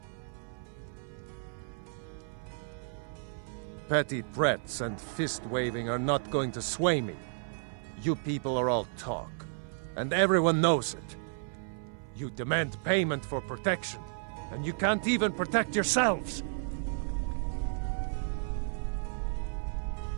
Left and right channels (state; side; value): silent; left; 56 dB below the other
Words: Petty threats and fist-waving are not going to sway me. You people are all talk, and everyone knows it. You demand payment for protection, and you can't even protect yourselves.